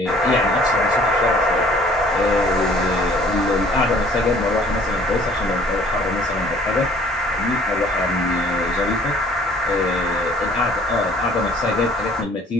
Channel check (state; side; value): normal; both; correlation 0.55